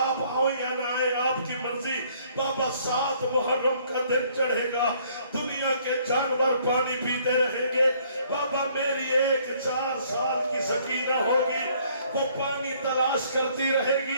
آپ آؤ یا نہ آئے آپ کی مرضی بابا 7 محرم کا دن چڑھے گا دنیا کے جانور پانی پیتے رہیں گے بابا میری ایک 4 سال کی سکینہ ہوگی وہ پانی تلاش کرتی رہے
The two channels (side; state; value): both; inverted; correlation -0.62